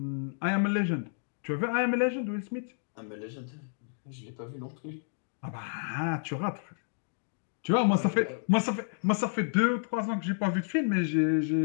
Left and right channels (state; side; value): silent; right; digital silence